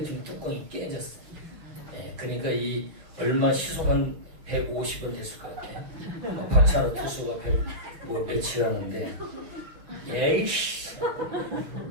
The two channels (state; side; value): late; left; 6.1 ms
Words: 뚜껑이 깨졌어요. 그러니까 이 얼마 시속 한 150원 됐을 것 같아요. 박찬호 투수가 며칠 하는데 예이씨